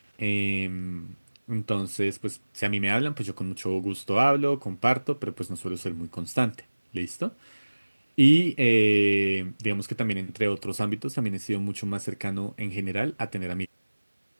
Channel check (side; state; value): both; inverted; correlation -1.00